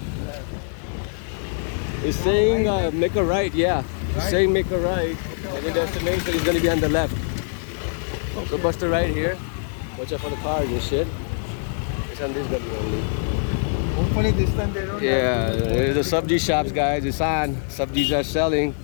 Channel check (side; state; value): right; silent; 59 dB below the other